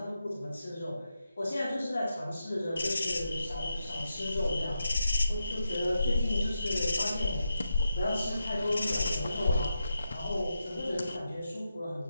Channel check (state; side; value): inverted; both; correlation -0.85